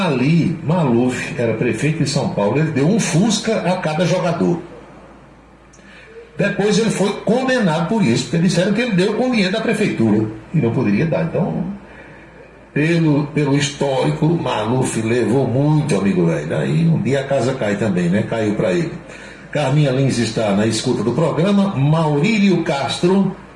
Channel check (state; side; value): identical; both; correlation 1.00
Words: Maluf era prefeito de São Paulo, ele deu um Fusca a cada jogador. Depois ele foi condenado por isso, porque disseram que ele deu com dinheiro da prefeitura e não poderia dar. Então, pelo histórico, Maluf levou muito, amigo velho. Aí um dia a casa cai também, né? Caiu para ele. Carminha Lins está na escuta do programa. Maurílio Castro